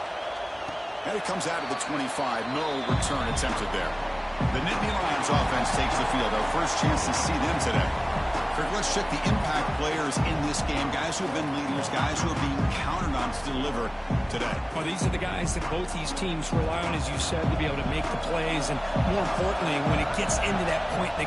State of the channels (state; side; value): identical; both; correlation 1.00